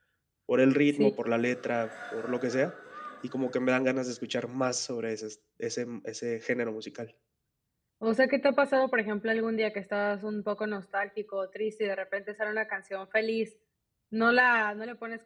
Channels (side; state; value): both; identical; correlation 1.00